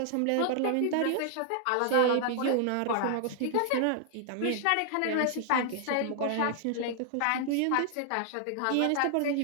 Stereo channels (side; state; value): both; different; correlation 0.00